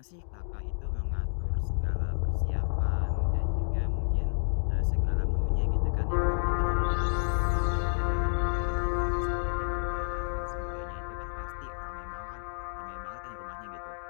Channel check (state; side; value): silent; right; digital silence